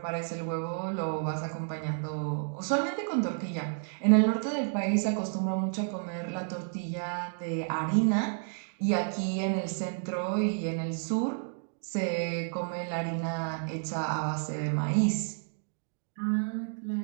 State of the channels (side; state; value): left; silent; digital silence